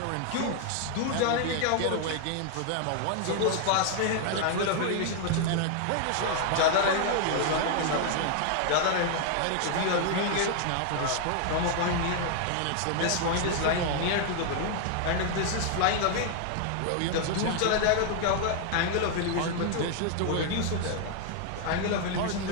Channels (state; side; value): different; both; correlation 0.00